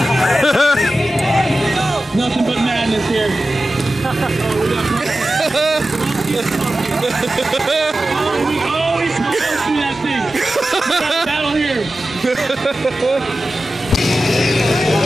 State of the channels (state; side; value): normal; both; correlation 0.94